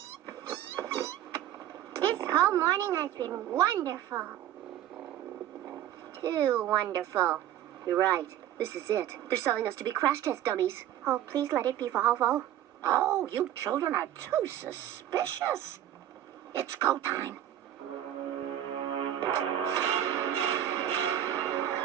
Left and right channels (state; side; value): quieter; left; 11.7 dB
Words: This whole morning has been wonderful. Too wonderful. You're right. This is it. They're selling us to be crash test dummies. Oh, please let it be Volvo. Oh, you children are too suspicious. It's go time.